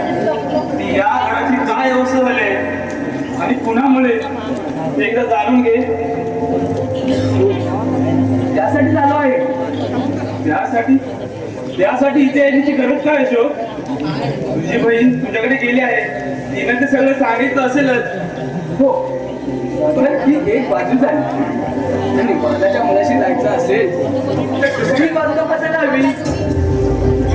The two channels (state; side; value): identical; both; correlation 1.00